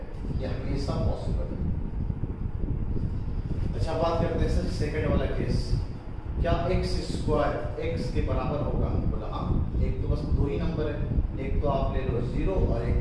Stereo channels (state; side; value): identical; both; correlation 1.00